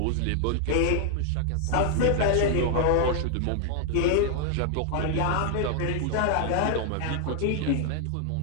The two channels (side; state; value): both; different; correlation 0.00